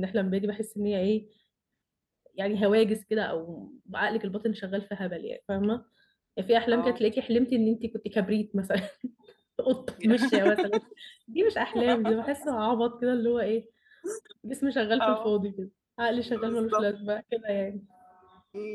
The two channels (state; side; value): identical; both; correlation 1.00